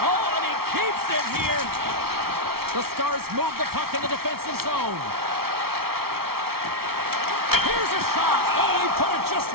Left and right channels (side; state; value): left; late; 0.94 ms